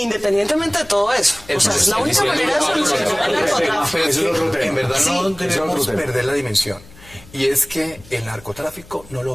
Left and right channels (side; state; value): left; noise; hum, 23 dB below the sound